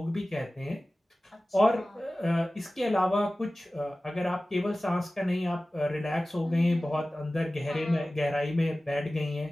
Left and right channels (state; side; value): normal; both; correlation 0.97